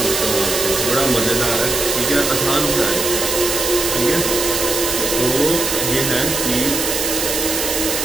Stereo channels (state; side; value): noise; right; hiss, 1 dB below the sound